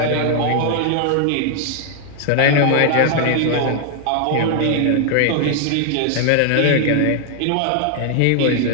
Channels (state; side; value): different; both; correlation 0.00